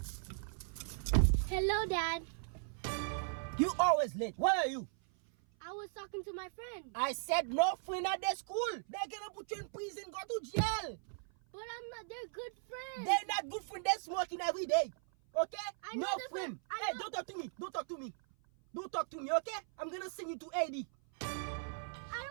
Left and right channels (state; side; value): silent; left; 53 dB below the other